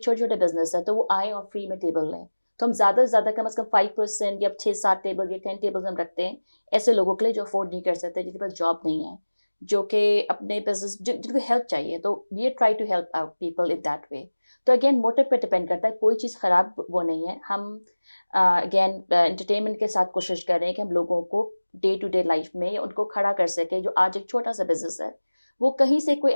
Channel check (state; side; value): inverted; both; correlation -1.00